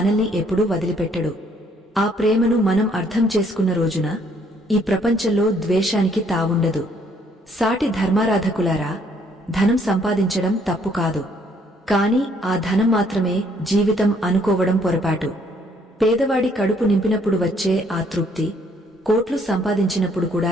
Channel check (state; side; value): normal; both; correlation 0.65